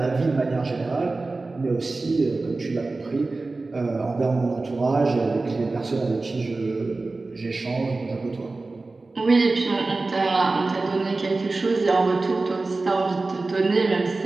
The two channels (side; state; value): left; quieter; 3.4 dB